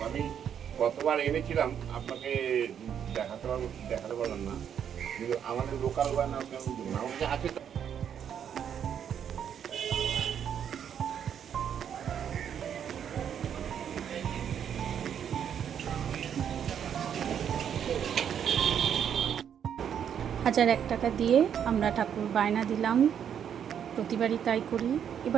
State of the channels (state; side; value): quieter; left; 8.6 dB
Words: আমি কতবার এনেছিলাম, আপনাকে দেখাতে পারলাম না, কিন্তু আমাদের লোকাল গয়না কেমন দেবেন, আমার কাছে আছে তো। হাজার 1 টাকা দিয়ে আমরা ঠাকুর বায়না দিলাম, প্রতিবারই তাই করি।